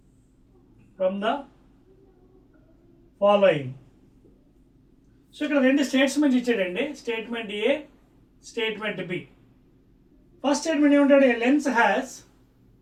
From the following. So ఇక్కడ రెండు statements ఇచ్చాడండి. స్టేట్మెంట్ ఏ, statement B. First statement ఏమంటాడు? A lens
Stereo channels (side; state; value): both; identical; correlation 1.00